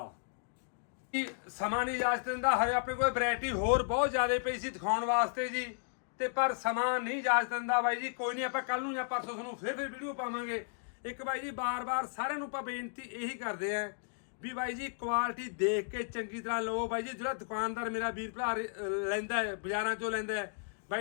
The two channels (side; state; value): right; silent; digital silence